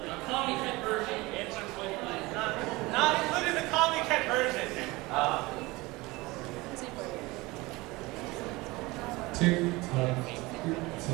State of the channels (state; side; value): quieter; left; 22.1 dB